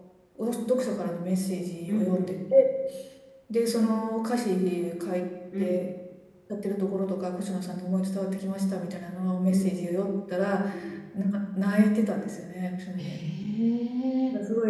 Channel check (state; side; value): identical; both; correlation 1.00